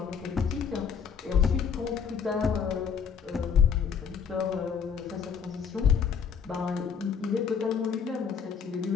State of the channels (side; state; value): right; quieter; 6.8 dB